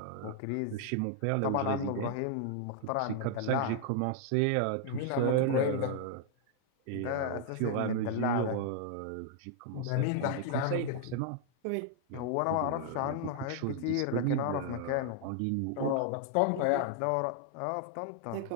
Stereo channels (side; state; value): both; different; correlation 0.00